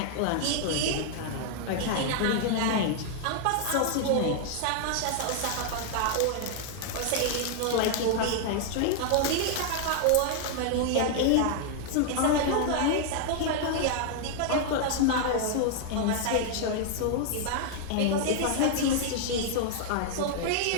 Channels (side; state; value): both; different; correlation 0.00